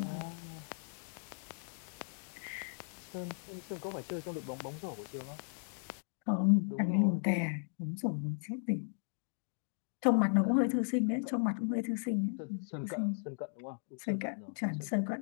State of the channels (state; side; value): silent; right; digital silence